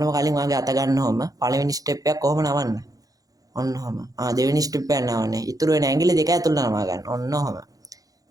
කලින් වාගේ අත ගන්නවම පළවෙනි ස්ටෙප් එක කොහොම නවන්න? ඔන්න ඔහම. දෙවෙනි ස්ටෙප් එක නවන්නේ. ඉතුරු වෙන ඇඟිලි දෙක ඇතුළට නමා ගන්න. ඔන්න ඔහම.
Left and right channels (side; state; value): left; late; 0.17 ms